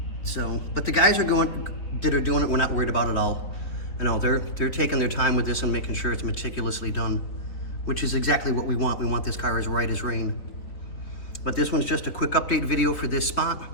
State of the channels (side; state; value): right; late; 3.9 ms